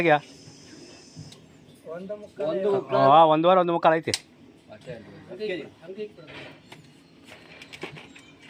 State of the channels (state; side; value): identical; both; correlation 1.00